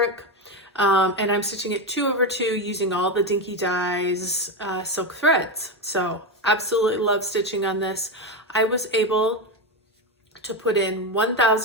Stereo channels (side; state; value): both; normal; correlation 0.13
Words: And I'm stitching it 2/2 using all the Dinky Dyes silk threads. So absolutely love stitching on this. I was able to put in